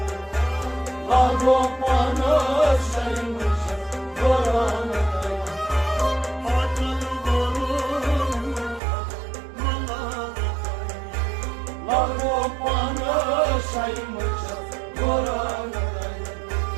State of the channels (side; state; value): left; drops out; at 8.8 s